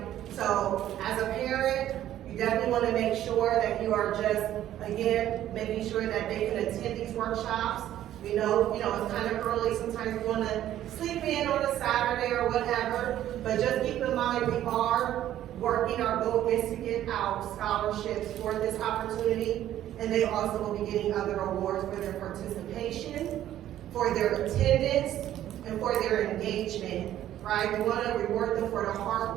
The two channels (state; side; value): quieter; left; 12.3 dB